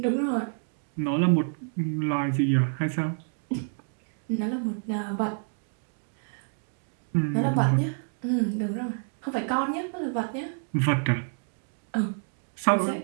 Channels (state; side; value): silent; left; 59 dB below the other